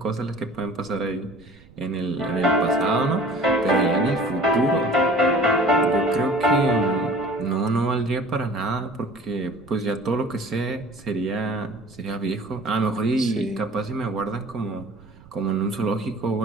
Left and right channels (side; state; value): right; noise; rumble, 24 dB below the sound